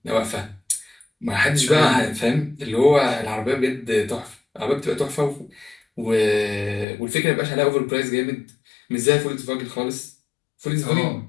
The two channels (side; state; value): right; drops out; at 6.9 s